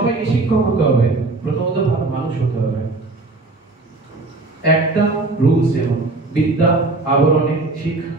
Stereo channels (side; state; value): left; quieter; 3.3 dB